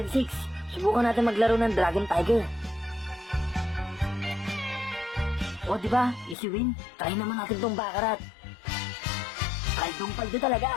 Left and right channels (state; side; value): drops out; right; at 6.4 s